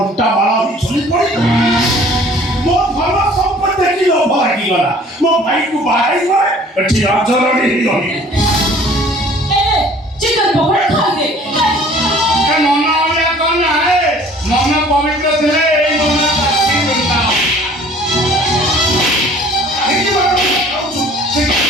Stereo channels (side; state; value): both; normal; correlation 0.51